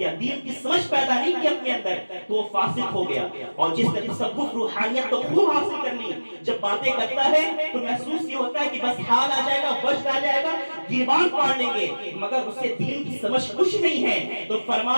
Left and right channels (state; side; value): inverted; both; correlation -1.00